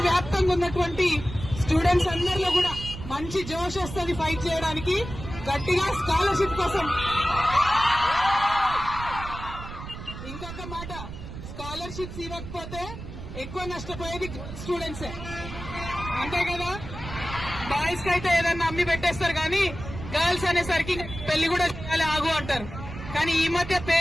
వ్యాప్తంగా ఉన్నటువంటి స్టూడెంట్స్ అందరిలో కూడా మంచి జోష్ వస్తుంది ఫైట్ చేయడానికి. గట్టిగా స్కాలర్షిప్ కోసం. ఇంకొక మాట, స్కాలర్షిప్స్ ఇవ్వకపోతే ఎక్కువ నష్టపోయేది స్టూడెంట్సే, అంతే కదా? బాయ్స్ కి అయితే ఏదన్నా అమ్మి పెట్టేస్తారు, కానీ గర్ల్స్ అనేసరికి పెళ్లి కూడా చేయాలి ఆగు అంటారు. కానీ ఈ మధ్య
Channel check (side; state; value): right; noise; rumble, 10 dB below the sound